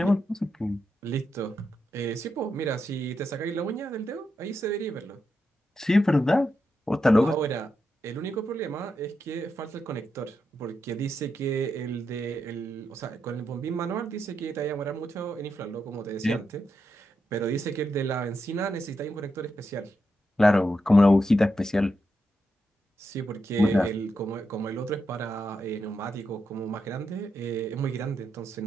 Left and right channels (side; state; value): both; normal; correlation 0.85